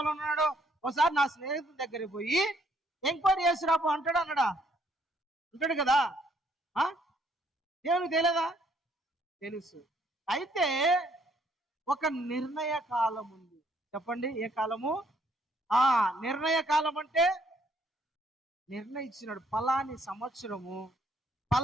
ఒకసారి నా స్నేహితుని దగ్గరికి పోయి ఎంక్వైరీ చేసి రాపు అంటాడు కదా. దేవునికి తెలియదా, తెలుసు. అయితే ఒక నిర్ణయ కాలం ఉంది. చెప్పండి, ఏ కాలము? నిర్ణయ కాలం అంటే నిర్ణయించినాడు, పలాని సంవత్సరము,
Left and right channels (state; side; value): normal; both; correlation 0.67